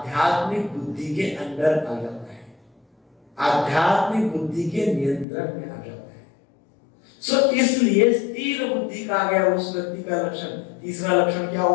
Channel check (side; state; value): right; drops out; at 5.2 s